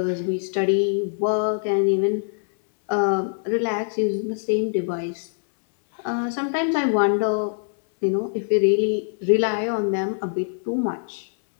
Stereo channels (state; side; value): silent; right; 62 dB below the other